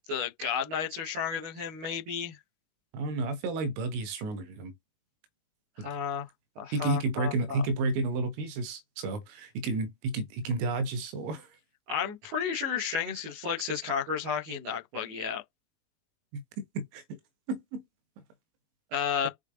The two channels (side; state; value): left; late; 19 ms